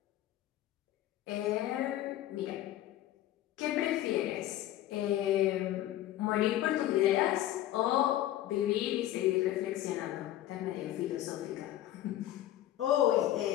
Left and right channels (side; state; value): right; quieter; 13.5 dB